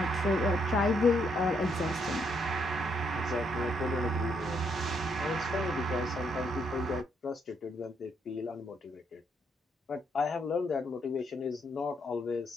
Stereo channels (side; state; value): both; normal; correlation 0.74